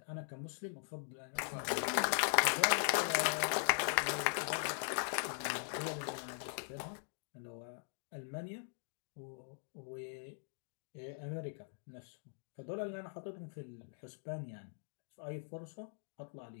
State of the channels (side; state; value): right; silent; digital silence